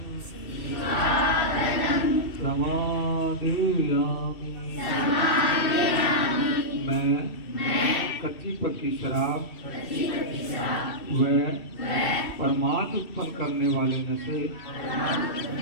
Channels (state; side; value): late; right; 2.7 ms